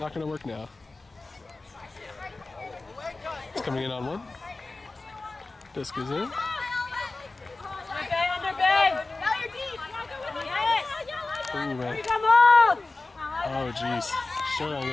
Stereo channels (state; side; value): quieter; right; 3.4 dB